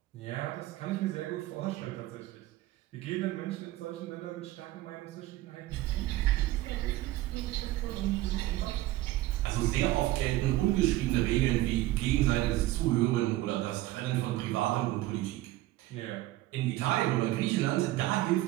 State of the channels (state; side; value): quieter; left; 16.3 dB